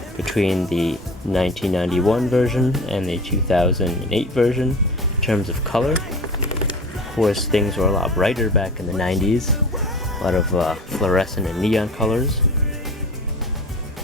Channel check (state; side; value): normal; both; correlation 0.36